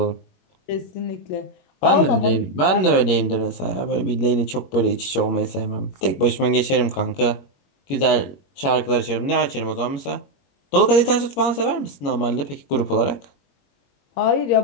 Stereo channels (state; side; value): late; right; 21 ms